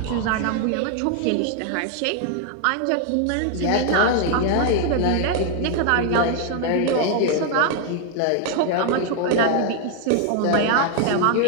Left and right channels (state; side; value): different; both; correlation 0.00